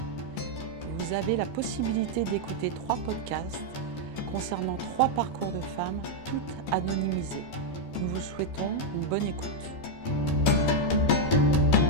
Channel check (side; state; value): right; late; 12 ms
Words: Vous avez la possibilité d'écouter 3 podcasts concernant 3 parcours de femmes, toutes anonymisées. Nous vous souhaitons une bonne écoute.